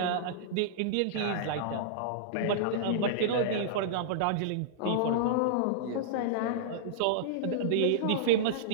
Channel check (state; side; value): different; both; correlation -0.02